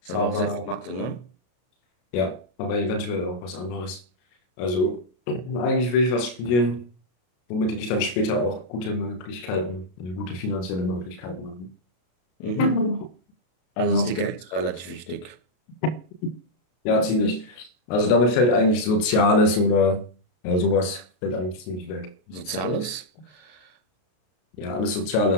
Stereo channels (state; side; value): late; right; 33 ms